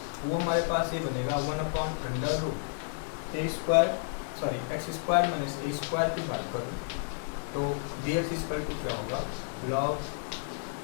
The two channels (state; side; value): silent; right; 55 dB below the other